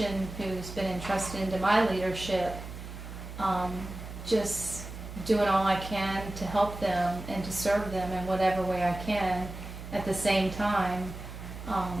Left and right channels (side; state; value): right; noise; hum, 10 dB below the sound